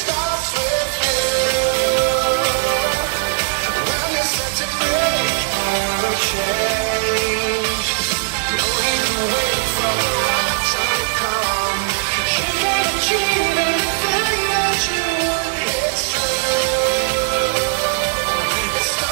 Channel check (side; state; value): left; silent; digital silence